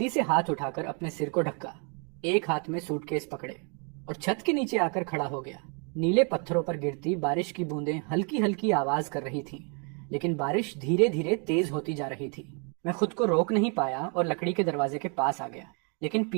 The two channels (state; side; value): quieter; left; 37.8 dB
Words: से हाथ उठाकर अपने सिर को ढका, एक हाथ में सूटकेस पकड़े और छत के नीचे आकर खड़ा हो गया। नीले पत्थरों पर गिरती बारिश की बूंदें हल्की हल्की आवाज कर रही थीं, लेकिन बारिश धीरे धीरे तेज होती जा रही थी। मैं खुद को रोक नहीं पाया और लकड़ी के दरवाजे के पास आ गया, लेकिन